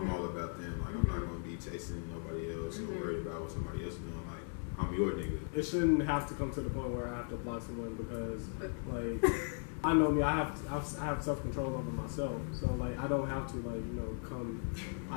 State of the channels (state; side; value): silent; right; 53 dB below the other